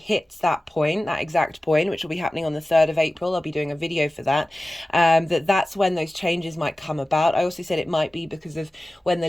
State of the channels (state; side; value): normal; both; correlation 0.96